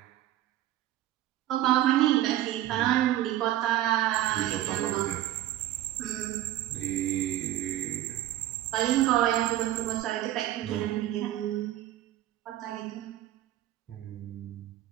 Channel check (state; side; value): quieter; left; 13.8 dB